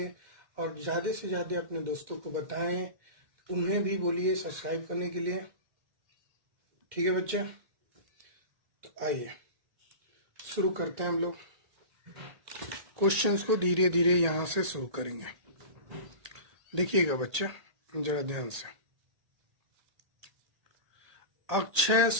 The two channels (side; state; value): left; late; 1.8 ms